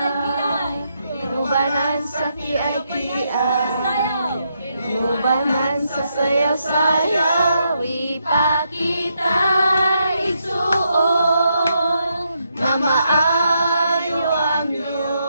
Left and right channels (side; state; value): both; inverted; correlation -0.79